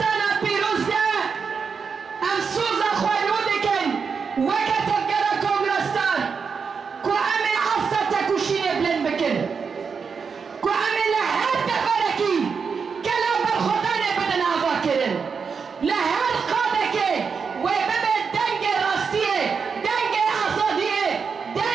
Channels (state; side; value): quieter; left; 5.7 dB